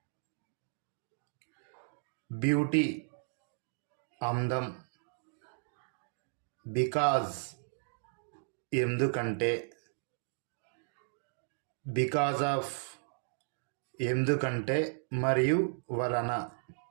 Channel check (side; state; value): left; silent; digital silence